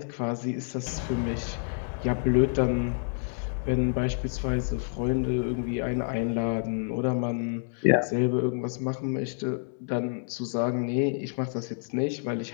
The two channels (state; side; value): silent; right; digital silence